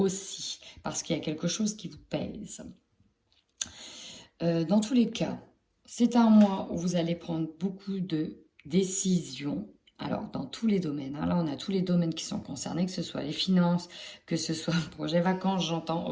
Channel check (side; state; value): both; identical; correlation 1.00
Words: parce qu'il y a quelque chose qui vous pèse. Dans tous les cas, c'est un mois où vous allez prendre beaucoup de décisions. Alors, dans tous les domaines, hein, là, on a tous les domaines qui sont concernés, que ce soit les finances, que ce soit le projet vacances, j'entends,